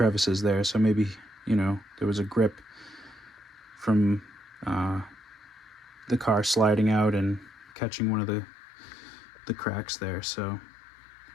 there, so maybe, there was a grip from the car sliding out and catching one of the cracks there. So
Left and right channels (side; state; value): right; drops out; at 7.7 s